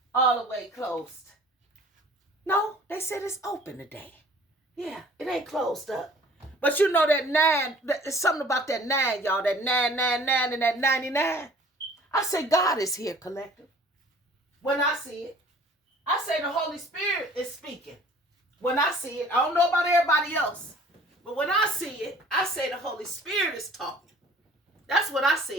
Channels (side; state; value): both; normal; correlation 0.50